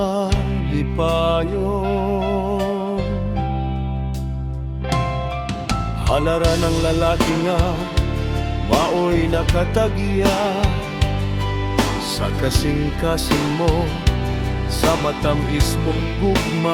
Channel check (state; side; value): identical; both; correlation 1.00